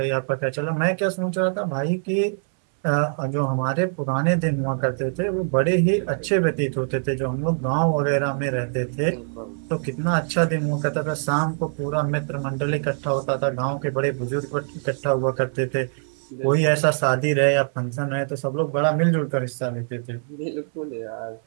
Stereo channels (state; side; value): silent; left; 61 dB below the other